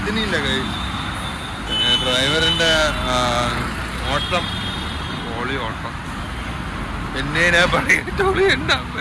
കയ്യിൽ ഡ്രൈവറിൻ്റെ ഓട്ടം, ഓളി ഓട്ടം. എന്നെ ഞാൻ പറയത്തോളി എൻ്റെ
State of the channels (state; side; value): identical; both; correlation 1.00